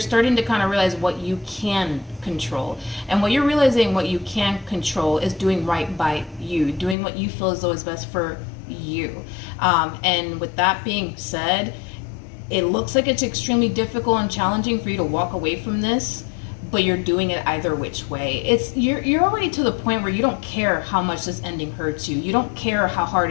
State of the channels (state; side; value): drops out; right; at 7.0 s